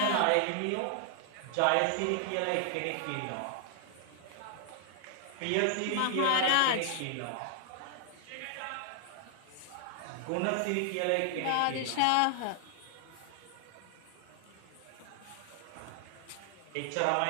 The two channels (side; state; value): both; different; correlation 0.00